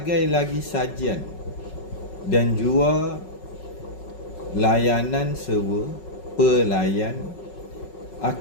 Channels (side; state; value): right; late; 5.4 ms